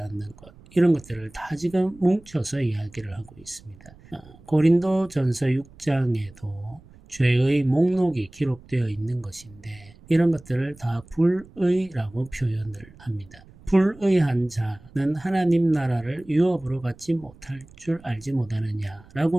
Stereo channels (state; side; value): noise; right; rumble, 24 dB below the sound